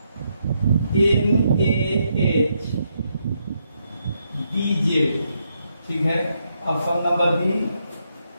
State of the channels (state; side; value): inverted; both; correlation -0.79